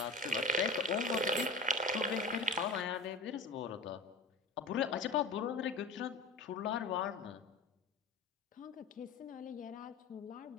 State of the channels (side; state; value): right; quieter; 3.4 dB